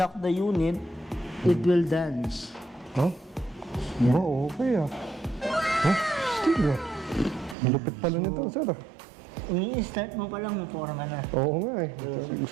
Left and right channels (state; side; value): drops out; left; at 7.6 s